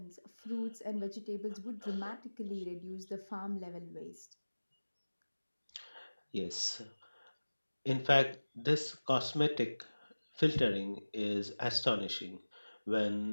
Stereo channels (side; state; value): both; inverted; correlation -1.00